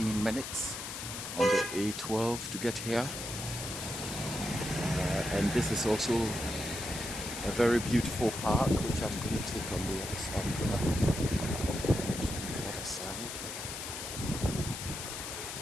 minutes on the A12 to get here. And this is also a very beautiful park, which I'm going to take on the other side.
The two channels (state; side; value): noise; left; hiss, 7 dB below the sound